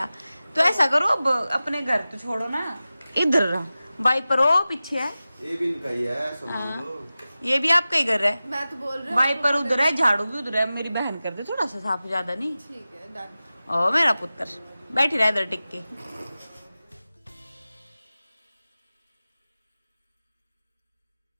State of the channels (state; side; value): inverted; both; correlation -0.96